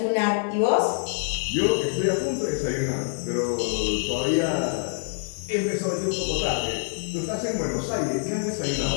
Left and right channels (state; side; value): silent; right; digital silence